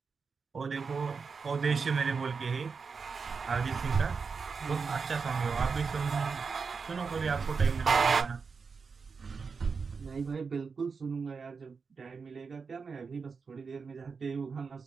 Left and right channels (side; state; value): left; quieter; 5.2 dB